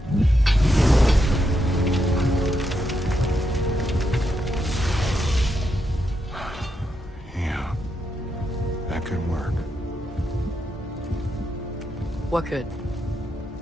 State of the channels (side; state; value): both; normal; correlation 0.82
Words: Yeah, that could work. What could?